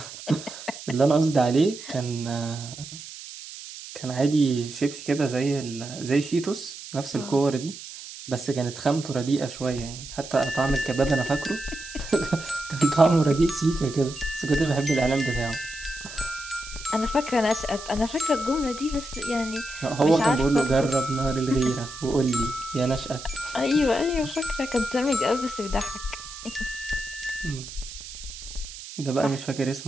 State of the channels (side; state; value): right; noise; hiss, 13 dB below the sound